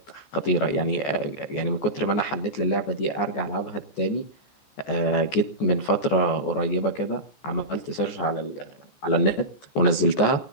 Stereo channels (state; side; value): late; right; 14 ms